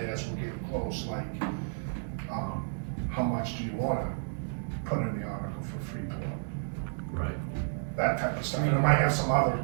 as we're getting close, like, how much do you wanna put in the article for Freeport? Right. That type of stuff, and I might have some other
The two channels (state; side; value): silent; left; digital silence